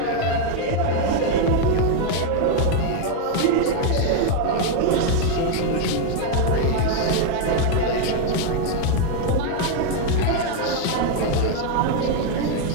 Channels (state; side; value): different; both; correlation 0.01